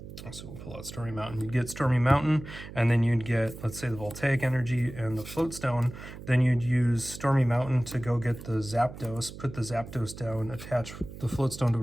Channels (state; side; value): noise; right; hum, 13 dB below the sound